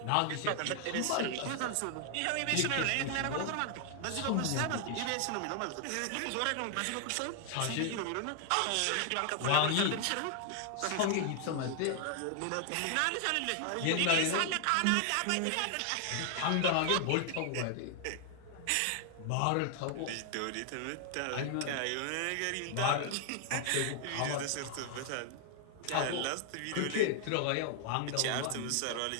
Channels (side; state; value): both; different; correlation 0.00